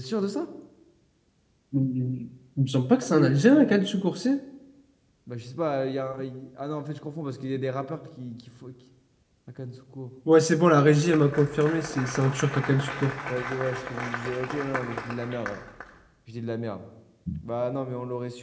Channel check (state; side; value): identical; both; correlation 1.00